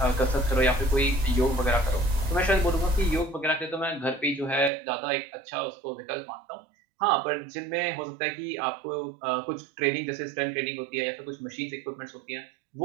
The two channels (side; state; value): left; drops out; at 4.7 s